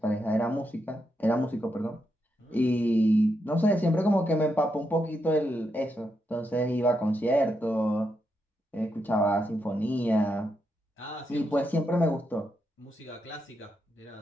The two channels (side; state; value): both; normal; correlation 0.82